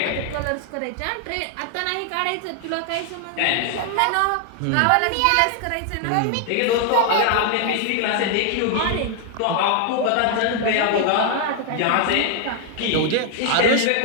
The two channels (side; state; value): both; different; correlation 0.00